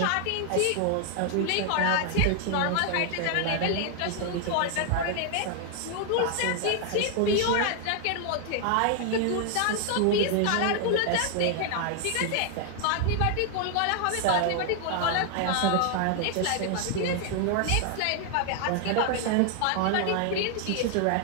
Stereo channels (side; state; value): both; different; correlation 0.00